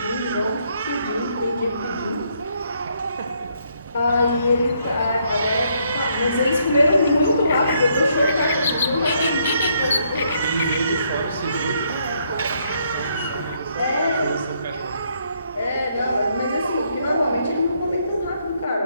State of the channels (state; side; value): inverted; both; correlation -0.72